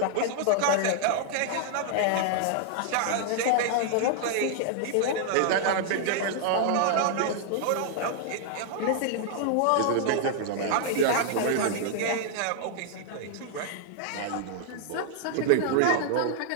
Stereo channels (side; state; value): both; different; correlation -0.01